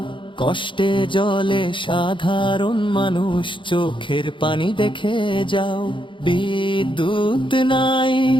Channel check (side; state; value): right; late; 0.24 ms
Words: কষ্টে জলে সাধারণ মানুষ, চোখের পানি দেখে যাও। বিদ্যুৎ